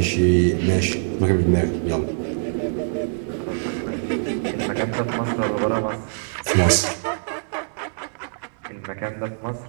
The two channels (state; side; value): silent; left; digital silence